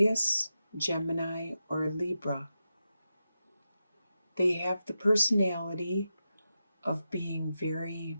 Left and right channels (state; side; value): inverted; both; correlation -0.89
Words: Gemini, or a Libra. They have the personality of being very,